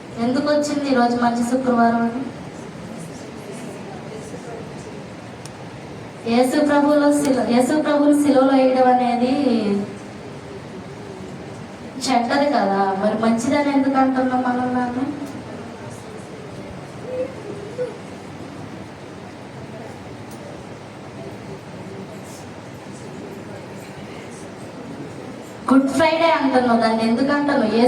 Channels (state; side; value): identical; both; correlation 1.00